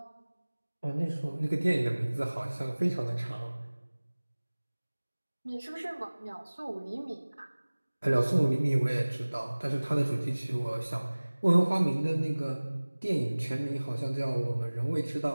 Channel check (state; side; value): inverted; both; correlation -1.00